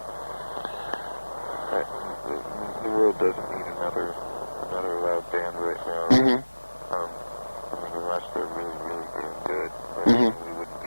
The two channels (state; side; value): inverted; both; correlation -1.00